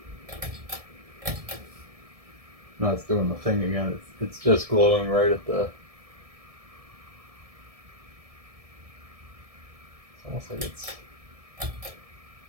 No, it's doing the thing again. It's just glowing right at the. It's almost like it's.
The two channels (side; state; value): left; late; 1.7 ms